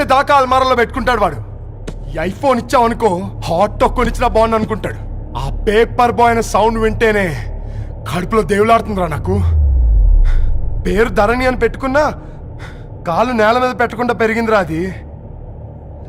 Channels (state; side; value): identical; both; correlation 1.00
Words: దాకా అల్మారాలో పెట్టుకుంటాడు వాడు. ఈ ఐఫోన్ ఇచ్చావనుకో హాట్ టాక్ కొనిచ్చినా బాగుంది అనుకుంటాడు. ఆ పేపర్ బాయ్ అనే సౌండ్ వింటేనే కడుపులో దేవులాడుతుందిరా నాకు. పేరు ధరణి అని పెట్టుకున్నా కాలు నేల మీద పెట్టకుండా పెరిగిందిరా అది.